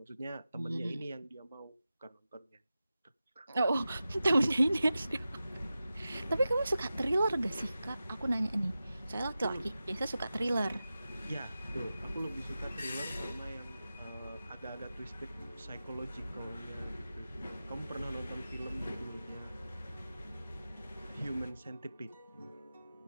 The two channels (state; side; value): inverted; both; correlation -0.93